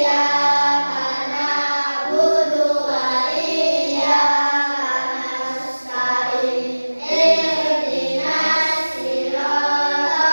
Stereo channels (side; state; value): both; inverted; correlation -1.00